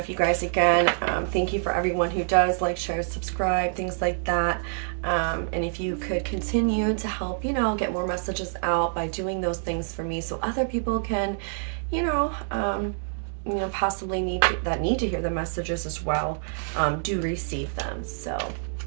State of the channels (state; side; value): silent; left; 61 dB below the other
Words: you guys, again, thank you for everyone who does like, share, subscribe, things like that. And if you could continue to help, you know, get more messages out by doing those things for me, so other people can, you know, possibly need to hear the messages as well, do receive them. So